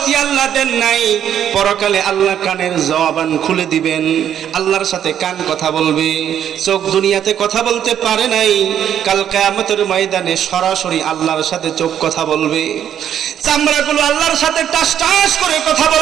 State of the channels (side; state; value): left; quieter; 9.8 dB